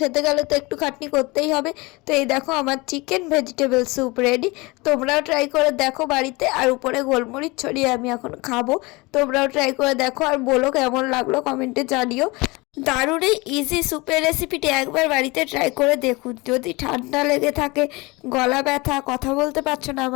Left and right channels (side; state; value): right; quieter; 24.4 dB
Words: গেলে তো একটু খাটনি করতেই হবে। তো এই দেখো আমার চিকেন ভেজিটেবল স্যুপ রেডি। তোমরাও ট্রাই করে দেখো বাড়িতে। আর উপরে গোলমরিচ ছড়িয়ে আমি এখন খাবো। তোমরাও ট্রাই করে দেখো আর বলো কেমন লাগলো, কমেন্টে জানিও। দারুণ এই ইজি স্যুপের রেসিপিটি একবার বাড়িতে ট্রাই করে দেখুন। যদি ঠান্ডা লেগে থাকে, গলা ব্যথা, কথা বলতে পারছো না,